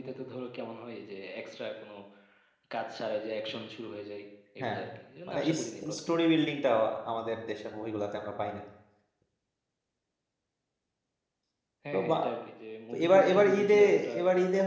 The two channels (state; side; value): identical; both; correlation 1.00